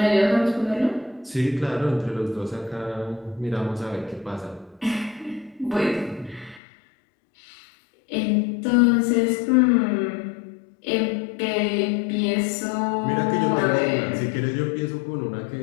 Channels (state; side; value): drops out; right; at 6.6 s